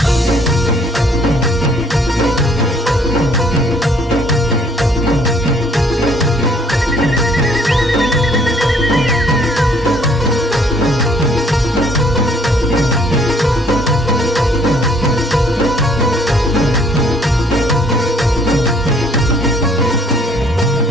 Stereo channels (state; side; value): normal; both; correlation 0.61